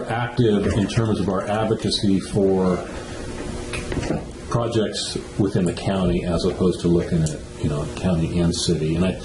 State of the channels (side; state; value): both; identical; correlation 1.00